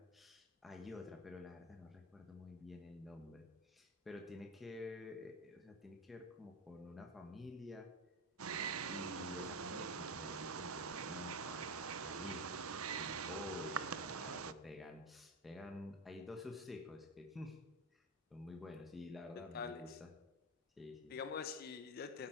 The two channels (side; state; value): both; normal; correlation 0.18